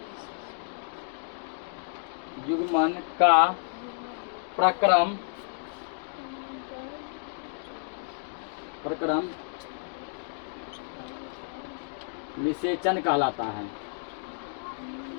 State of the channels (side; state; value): right; silent; digital silence